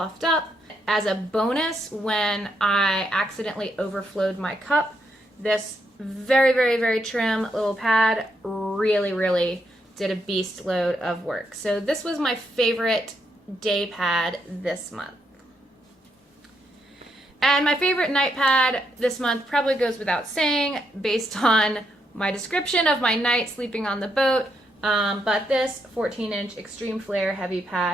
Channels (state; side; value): normal; both; correlation 0.79